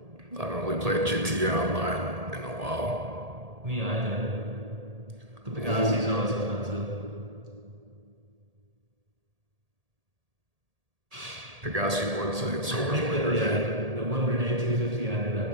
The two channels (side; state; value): left; late; 1.8 ms